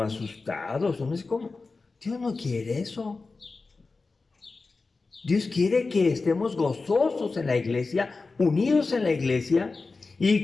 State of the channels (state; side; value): quieter; right; 3.9 dB